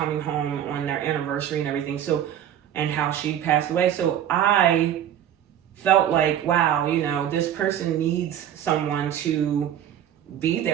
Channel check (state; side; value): quieter; left; 10.5 dB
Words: home on their anniversary and everything. So, and how she passed away. So I felt like, wow, this person needs someone to be